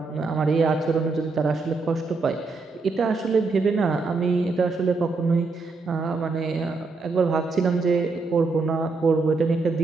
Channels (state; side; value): quieter; left; 3.9 dB